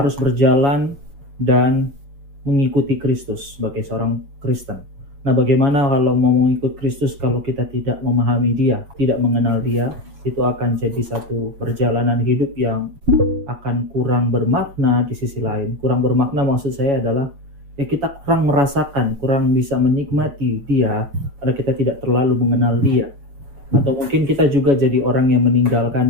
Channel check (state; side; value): late; left; 7.2 ms